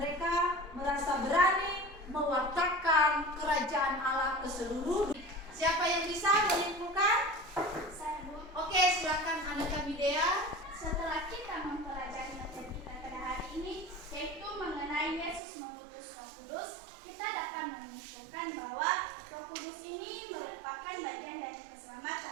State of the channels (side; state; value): left; drops out; at 15.4 s